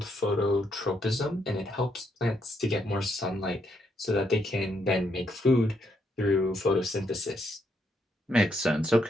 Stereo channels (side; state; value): both; normal; correlation 0.76